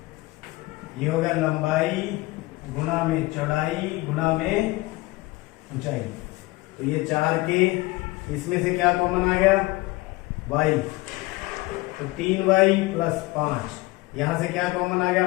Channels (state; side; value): quieter; right; 21.2 dB